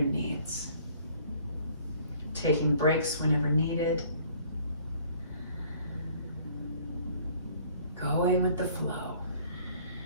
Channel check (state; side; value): inverted; both; correlation -0.56